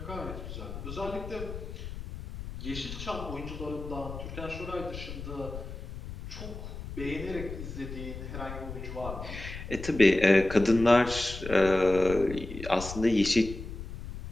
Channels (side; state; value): left; noise; rumble, 9 dB below the sound